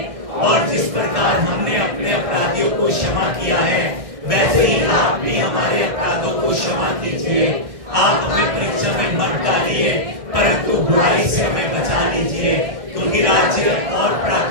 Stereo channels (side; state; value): left; late; 1.6 ms